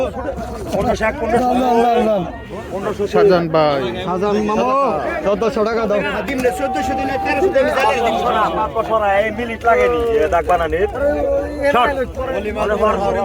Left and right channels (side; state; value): both; identical; correlation 1.00